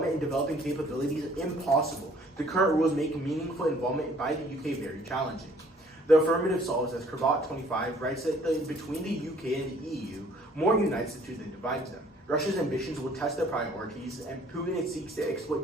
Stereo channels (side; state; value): both; normal; correlation 0.58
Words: in developing capabilities impossible. The current rules make meaningful involvement by the UK very challenging. The affirmative solves, as Cravat25 writes, that between the UK and the EU, more unites the two than divides them. Russia's ambitions will test their priorities, and Putin seeks to exploit